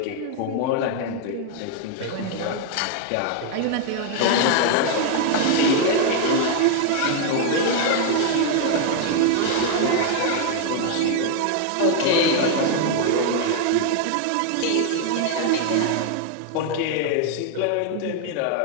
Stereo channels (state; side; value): different; both; correlation 0.00